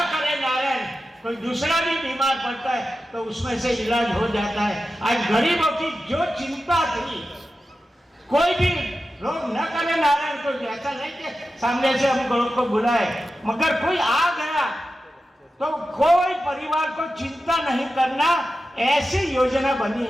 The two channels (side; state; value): both; normal; correlation 0.92